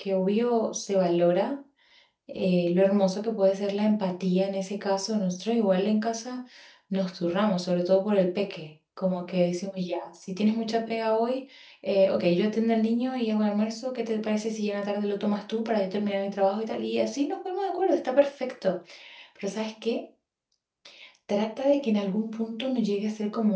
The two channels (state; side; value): identical; both; correlation 1.00